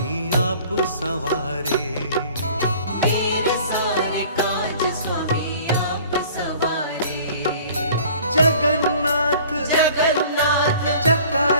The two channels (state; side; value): inverted; both; correlation -0.49